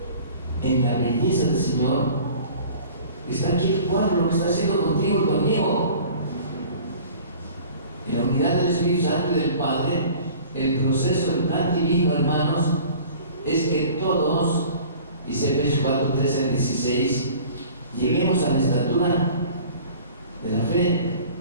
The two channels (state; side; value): inverted; both; correlation -0.46